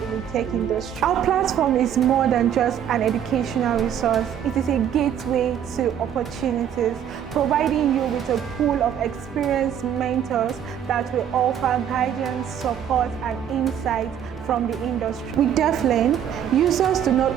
in the tech industry. Our platform is more than just an educational resource. It is a gateway to opportunities, providing you with a pool of experienced mentors that will offer guidance, support, and insight from the industry. With DeafLearn, users do not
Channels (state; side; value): quieter; left; 9.4 dB